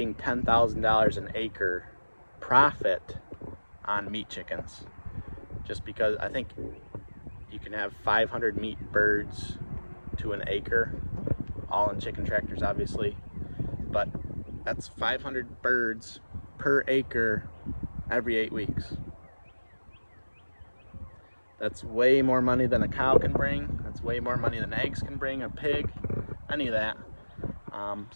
$10,000 an acre profit on meat chickens, just because I think you can have 500 meat birds to an acre, all in chicken tractors obviously, but that's 500 birds per acre every 8 weeks. That's way more money than a cow can bring. That's way more money than eggs can bring, a pig. any of that.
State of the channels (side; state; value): both; inverted; correlation -1.00